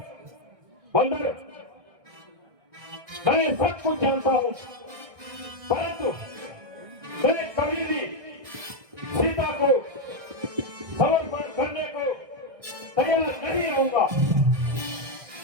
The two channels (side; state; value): left; late; 1.6 ms